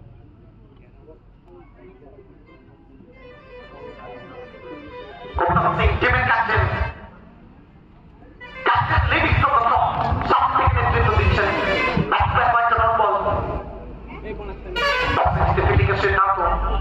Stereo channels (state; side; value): identical; both; correlation 1.00